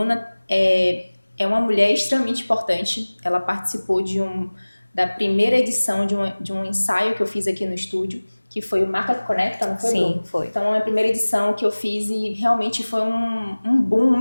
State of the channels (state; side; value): inverted; both; correlation -1.00